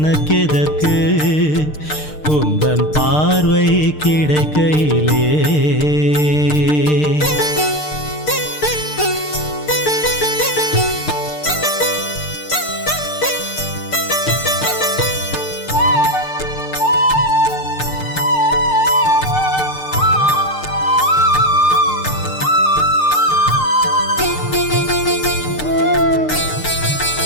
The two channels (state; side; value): late; right; 6.6 ms